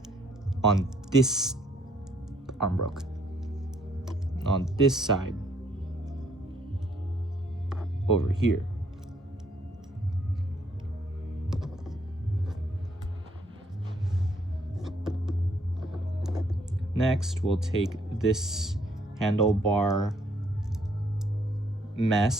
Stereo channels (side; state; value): both; normal; correlation 0.67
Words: on this arm broke. On this side over here. Next, we'll take this handlebar